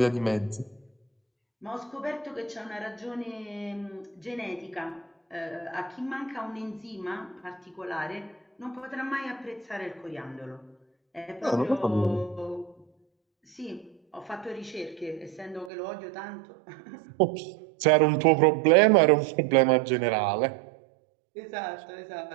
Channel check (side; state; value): left; drops out; at 15.7 s